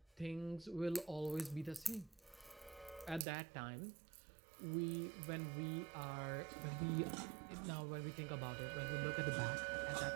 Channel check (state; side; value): drops out; left; at 3.2 s